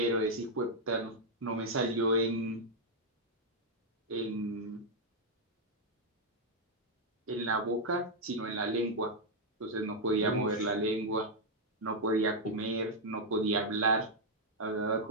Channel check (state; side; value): normal; both; correlation -0.02